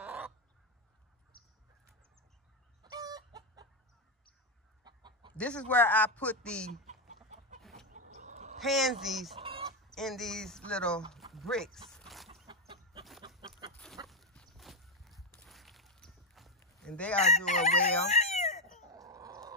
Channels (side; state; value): both; normal; correlation 0.05